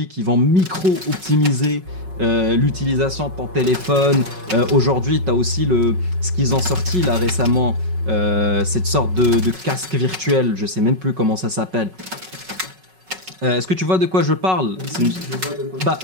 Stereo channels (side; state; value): left; late; 5.4 ms